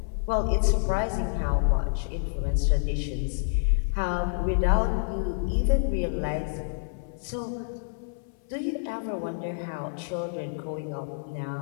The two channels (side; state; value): right; silent; 57 dB below the other